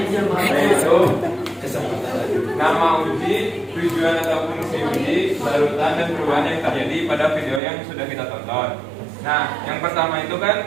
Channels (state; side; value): drops out; left; at 7.6 s